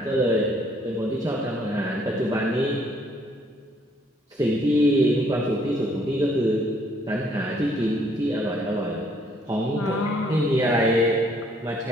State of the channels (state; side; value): normal; both; correlation 0.65